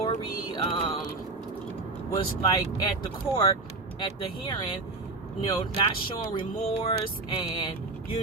was like at the court, at the hearing, not showing remorse and,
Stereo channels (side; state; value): left; quieter; 3.5 dB